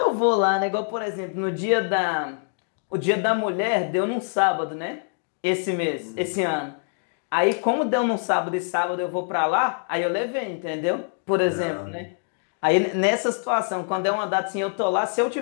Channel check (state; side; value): silent; right; 62 dB below the other